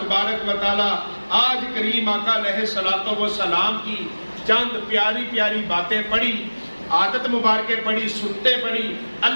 و تعالی آج کریم آقا علیہ الصلوۃ والسلام کی چند پیاری پیاری باتیں پڑھی، عادت مبارکیں پڑھی، سنتے پڑھی،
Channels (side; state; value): both; inverted; correlation -1.00